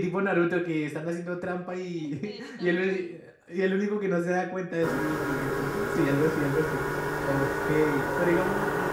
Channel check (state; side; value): identical; both; correlation 1.00